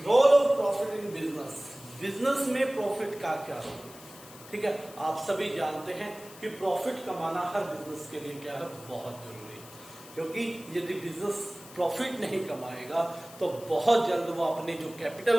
of profit in business. Business में प्रॉफिट का क्या रोल, ठीक है। आप सभी जानते हैं कि प्रॉफिट कमाना हर बिजनेस के लिए क्या है, बहुत जरूरी है। क्योंकि यदि बिजनेस प्रॉफिट नहीं कमाएगा तो बहुत जल्द वो अपनी जो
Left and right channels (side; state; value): left; noise; hiss, 18 dB below the sound